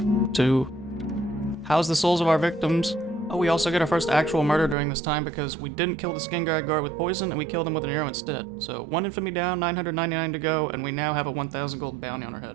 to house the souls of our victims. Oh, we also get our first actual murder during this time because we didn't kill the Skingrad guard with poison, and we killed him with an arrow instead. So 1 infamy down, 999 to go, and we now have a 1,000 gold bounty on our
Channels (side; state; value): left; drops out; at 4.8 s